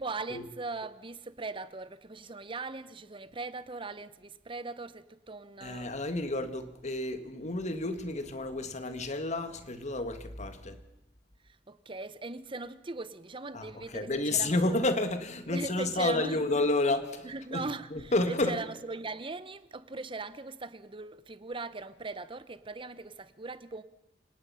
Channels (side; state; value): both; normal; correlation 0.33